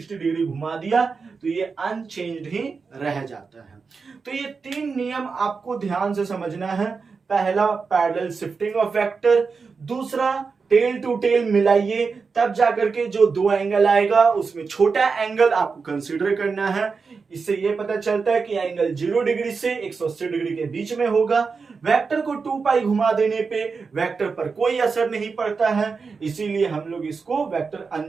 डिग्री घुमा दिया तो ये अनचेंज्ड ही रह जाता है। तो ये तीन नियम आपको ध्यान से समझना है। पहला पैरेलल शिफ्टिंग ऑफ वेक्टर, दूसरा टेल टू टेल मिलाइए तब जाकर के जो दो एंगल आएगा उसमें छोटा एंगल आपको कंसीडर करना है। इससे ये पता चलता है कि एंगल 0 डिग्री से 180 डिग्री के बीच में होगा। वेक्टर को 2 पाई घुमा देने पे वेक्टर पर कोई असर नहीं पड़ता है, इसीलिए हम लोग इसको वेक्टर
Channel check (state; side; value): quieter; left; 4.9 dB